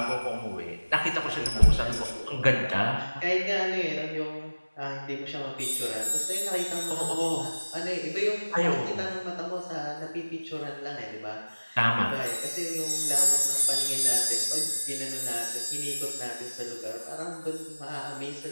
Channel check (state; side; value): inverted; both; correlation -1.00